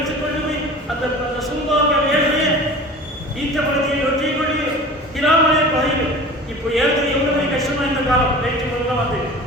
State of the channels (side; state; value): both; normal; correlation 0.39